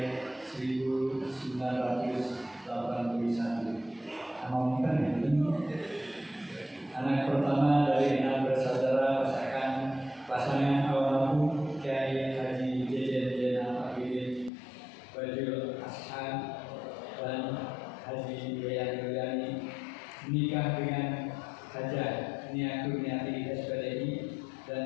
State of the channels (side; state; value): right; drops out; at 14.5 s